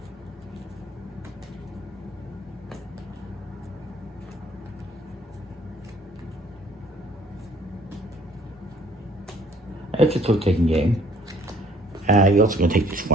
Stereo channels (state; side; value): normal; both; correlation 0.59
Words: It's a trick-taking game. You're also going to take these